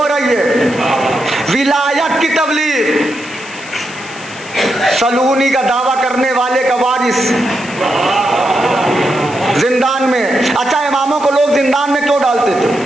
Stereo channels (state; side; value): noise; left; hiss, 18 dB below the sound